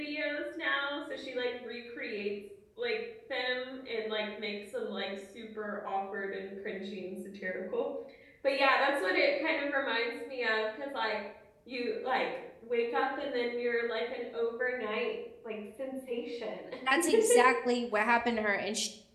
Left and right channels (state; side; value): identical; both; correlation 1.00